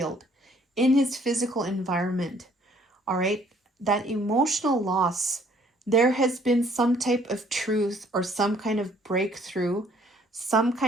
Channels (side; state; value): both; normal; correlation 0.61